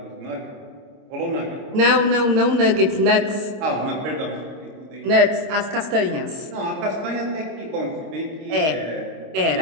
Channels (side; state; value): left; late; 26 ms